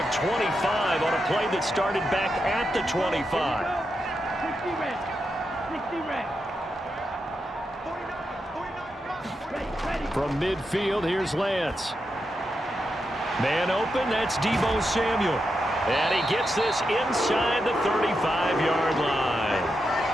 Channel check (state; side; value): normal; both; correlation 0.86